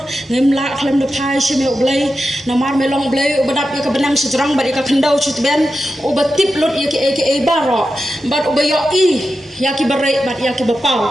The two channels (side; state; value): both; normal; correlation 0.90